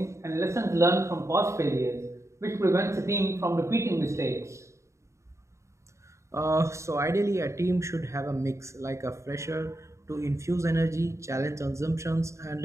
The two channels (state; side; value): late; left; 0.14 ms